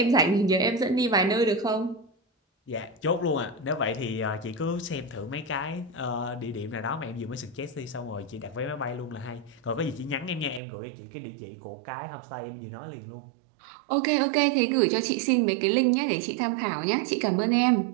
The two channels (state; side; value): drops out; left; at 10.6 s